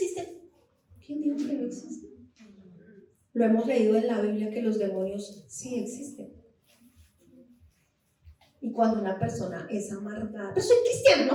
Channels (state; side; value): identical; both; correlation 1.00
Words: ¿Quién dijo que no existen? Lo hemos leído en la Biblia que los demonios sí existen. Y cuando una persona es amargada, pero soy cristiano,